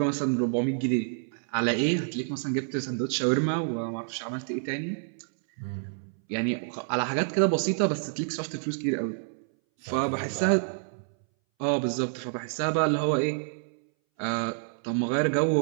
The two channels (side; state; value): left; silent; 59 dB below the other